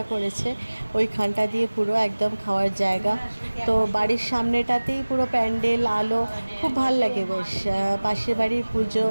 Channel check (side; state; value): both; inverted; correlation -1.00